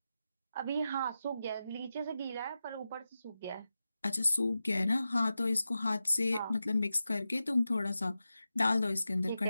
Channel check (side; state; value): both; inverted; correlation -0.92